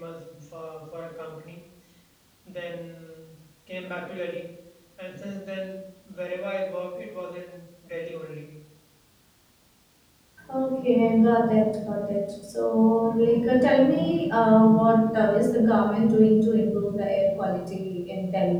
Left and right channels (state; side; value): identical; both; correlation 1.00